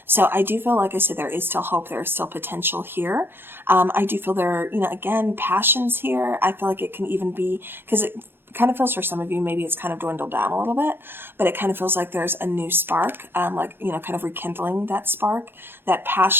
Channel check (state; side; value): late; left; 0.10 ms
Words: So I do feel, like I said, there is still hope. There is still potential here. I do feel there, again, passions here. I feel like it can even be, because it kind of feels for some of you, maybe it's kind of dwindled down a little bit, but it kind of feels like there's a new spark, kind of rekindling that spark, that